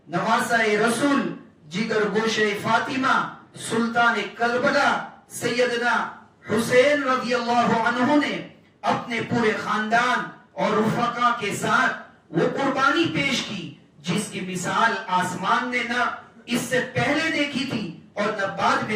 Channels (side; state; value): both; identical; correlation 1.00